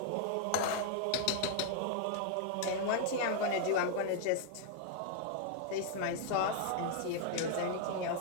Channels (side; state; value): both; different; correlation -0.01